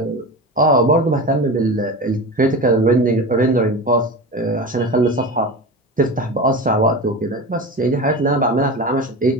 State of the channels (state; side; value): normal; both; correlation 0.27